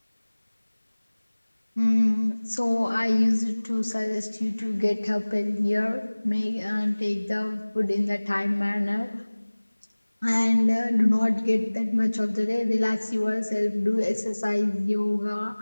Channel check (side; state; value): both; inverted; correlation -1.00